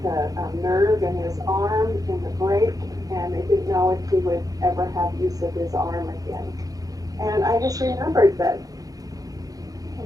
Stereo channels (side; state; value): left; late; 0.17 ms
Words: the nerve in his arm in the break, and they didn't know if he would ever have use of his arm again. And I just remembered that,